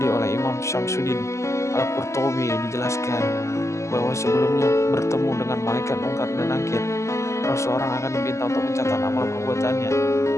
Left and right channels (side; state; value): right; late; 0.14 ms